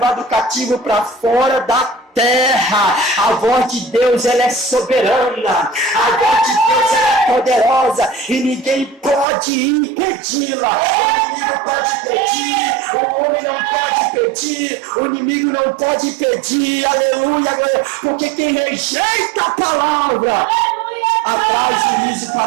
cativo para fora da terra. A voz de Deus ela é soberana. A voz de Deus ela é poderosa. E ninguém pode impedi-la. O inimigo pode pedir. O homem não pode pedir. O inimigo não pode pedir. Aleluia. Porque quem rejeita a palavra atrai juízo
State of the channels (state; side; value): drops out; left; at 9.2 s